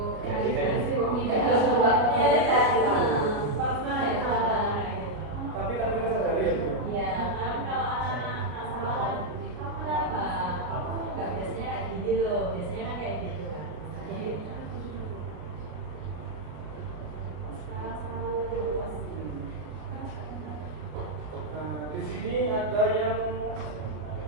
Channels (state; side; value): late; left; 33 ms